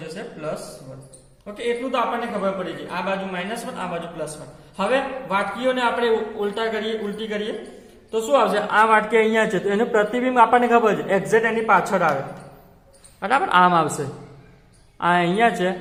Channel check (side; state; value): both; identical; correlation 1.00